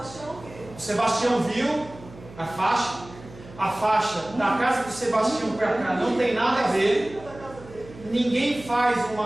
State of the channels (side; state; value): right; noise; hum, 19 dB below the sound